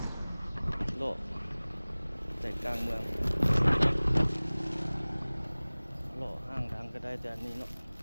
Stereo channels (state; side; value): inverted; both; correlation -1.00